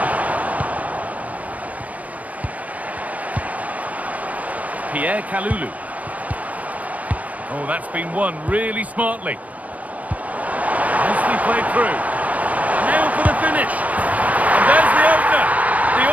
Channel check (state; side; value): late; left; 0.072 ms